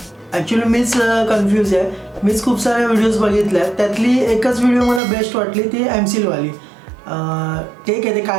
ॲक्च्युली मीच कन्फ्यूज आहे. मीच खूप साऱ्या व्हिडिओज बघितल्या आहेत, त्यातली एकच व्हिडिओ मला बेस्ट वाटली, ती एमसीलवाली. ठीक आहे, ते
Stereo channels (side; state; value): left; drops out; at 5.0 s